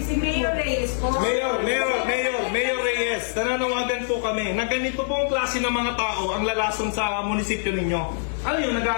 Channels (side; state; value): right; silent; digital silence